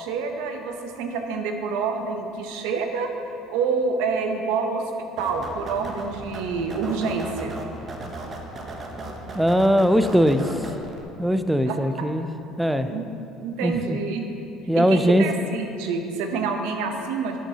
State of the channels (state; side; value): normal; both; correlation 0.70